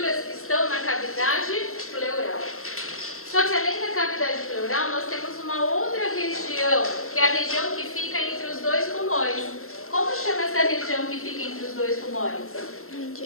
que estão na cavidade pleural. Só que além da cavidade pleural, nós temos uma outra região, que é a região que fica entre os dois pulmões. Como chama essa região que fica entre os dois pulmões?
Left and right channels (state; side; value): late; right; 0.62 ms